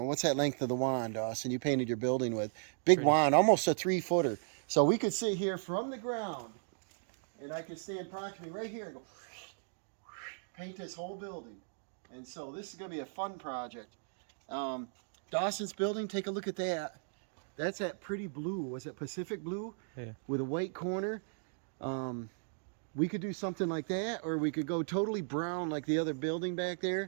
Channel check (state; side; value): silent; left; digital silence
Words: what's that length of the wand, Dawson, you painted your building with? Big wand, almost a 3-footer. So we could sit here from the ground, and I could stand approximately right here and go paint this whole building. And so this is going to be a fun project. Dawson's building, take a look at that. That's that pretty blue. Was it Pacific blue? Yeah. With a white corner. We could do something like that, or we could go totally brown like the other building back